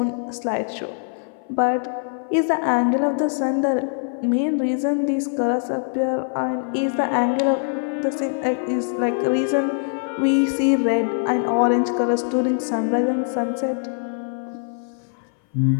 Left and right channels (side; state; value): right; silent; 58 dB below the other